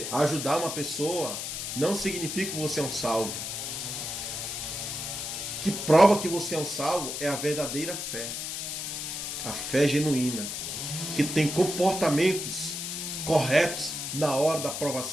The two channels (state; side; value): noise; left; hiss, 5 dB below the sound